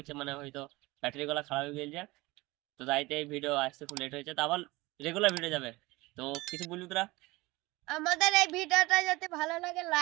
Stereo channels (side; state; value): left; quieter; 21.5 dB